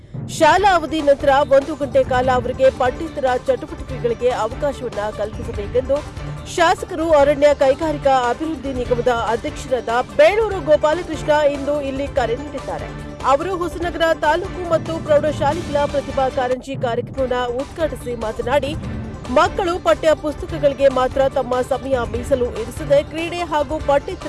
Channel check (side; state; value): both; identical; correlation 1.00